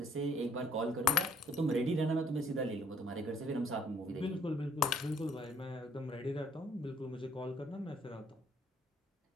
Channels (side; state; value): both; normal; correlation 0.61